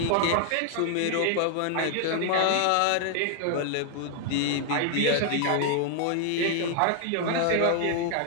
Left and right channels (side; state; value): both; different; correlation 0.00